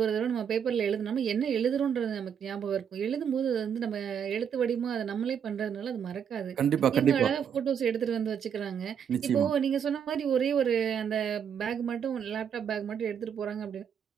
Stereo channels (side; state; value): left; quieter; 7.9 dB